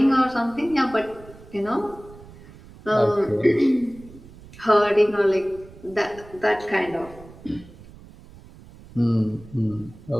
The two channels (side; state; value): right; noise; rumble, 20 dB below the sound